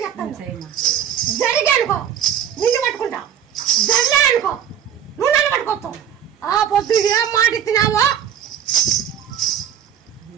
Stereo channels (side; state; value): left; quieter; 9.2 dB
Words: చెప్తాను జరిగానుకో నిన్ను పట్టుకుంటా జరలే అనుకో నువ్వు నన్ను పట్టుకోస్తావు. ఆ పొద్దు ఏం మాట ఇచ్చినావో